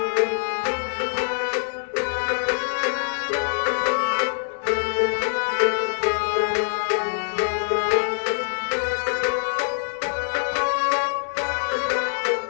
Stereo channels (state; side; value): silent; right; digital silence